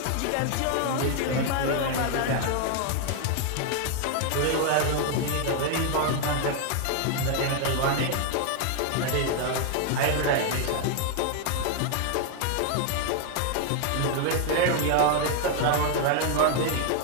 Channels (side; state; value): both; different; correlation 0.00